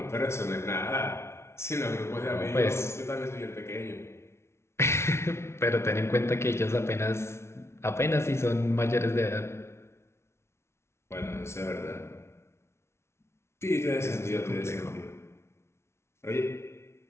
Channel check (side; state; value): right; late; 0.13 ms